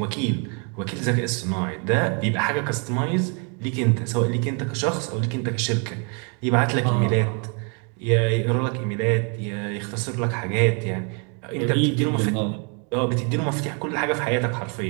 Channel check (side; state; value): left; quieter; 36.9 dB